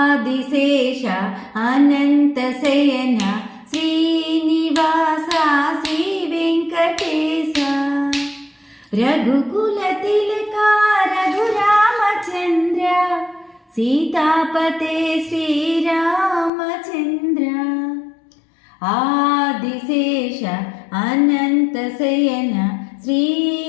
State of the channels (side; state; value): right; drops out; at 16.5 s